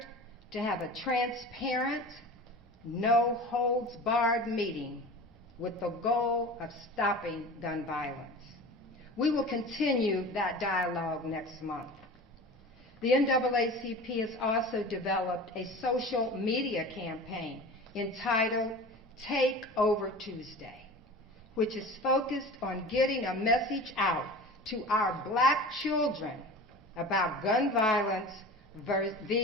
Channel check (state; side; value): normal; both; correlation 0.36